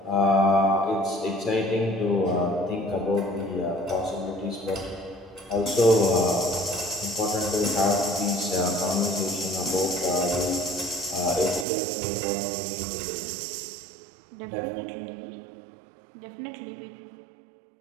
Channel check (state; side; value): drops out; left; at 11.7 s